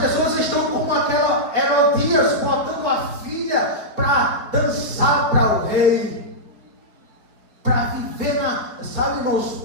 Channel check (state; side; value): late; left; 4.7 ms